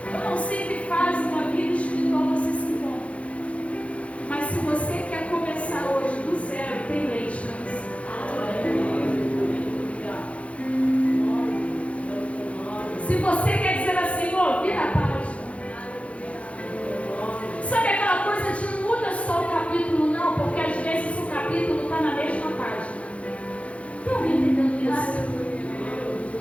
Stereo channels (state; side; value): late; right; 0.063 ms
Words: Eu não sei que fase uma vida espiritual você se encontra, mas se você quer começar hoje do zero, tem leite para você. Se você quer dizer assim: ó, vira a página. Sabe aquela coisa de não muda só o capítulo, não, porque às vezes o capítulo está na mesma página. Tem alguém entendendo isso?